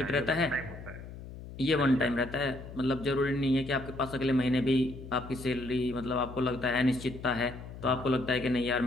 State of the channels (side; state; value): left; noise; hum, 13 dB below the sound